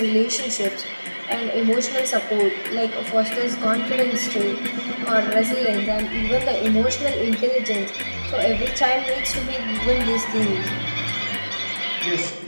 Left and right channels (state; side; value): inverted; both; correlation -1.00